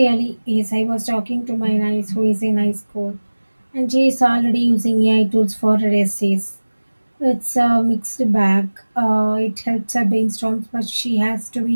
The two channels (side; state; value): both; inverted; correlation -1.00